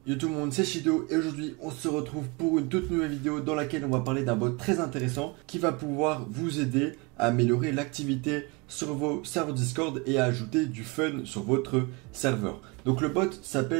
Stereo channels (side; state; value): left; quieter; 27.3 dB